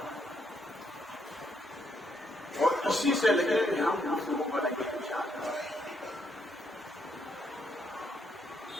اور اسی سے لگے کہ ہم دوسروں کو بنائیں گے انشاءاللہ.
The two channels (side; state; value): both; normal; correlation 0.75